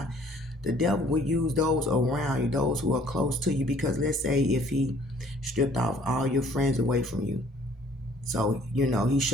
The devil will use those around you, those who are close to you, because let's say if he stripped off all your friends away from you. So, he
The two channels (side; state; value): both; normal; correlation 0.58